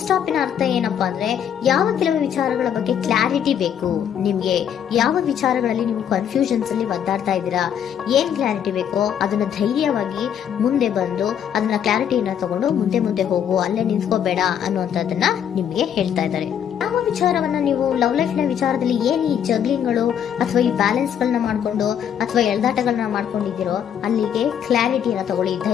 ಸ್ಟಾಪ್ ನ ಅರ್ಥ ಏನಪ್ಪಾ ಅಂದ್ರೆ, ಯಾವ ಕೆಲವು ವಿಚಾರಗಳ ಬಗ್ಗೆ ಕ್ಲಾರಿಟಿ ಬೇಕು ನಿಮ್ಗೆ, ಯಾವ ವಿಚಾರಗಳಲ್ಲಿ ನೀವು ಕನ್ಫ್ಯೂಷನ್ಸ್ ಅಲ್ಲಿ ಒದ್ದಾಡ್ತಾ ಇದ್ದೀರಾ, ಏನ್ ಕ್ಲಾರಿಟಿ ಬೇಕೋ ಅದನ್ನ ಧೈರ್ಯವಾಗಿ ಮುಂದೆ ಬಂದು ಅದನ್ನ ಕ್ಲಾರಿಟಿಯನ್ನ ತಗೊಂಡು ಮುಂದೆ ಹೋಗು, ಅಲ್ಲೇ ನಿಂತ್ಕೋಬೇಡ ಅನ್ನುವಂಥದ್ದನ್ನ ನಿಮ್ಗೆ ಹೇಳ್ತಾ ಇದ್ದಾರೆ. ಯಾವ ವಿಚಾರವನ್ನ ನೀವು ಲವ್ ಲೈಫ್ ನ ವಿಚಾರದಲ್ಲಿ ಏನ್ ಈ ಜಗ್ಲಿಂಗ್ಗಳು ಅಥವಾ ಈ ಬ್ಯಾಲೆನ್ಸ್ ಗಳನ್ನ ಮಾಡ್ಕೊಂಡು ಅಥವಾ ಎಳ್ದಾಟಗಳನ್ನ ಮಾಡ್ಕೊಂಡಿದ್ದೀರೋ ಅಲ್ಲಿಗೆ ಕ್ಲಾರಿಟಿಯನ್ನ ತಗೊಳ್ಳಿ,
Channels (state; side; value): quieter; right; 9.0 dB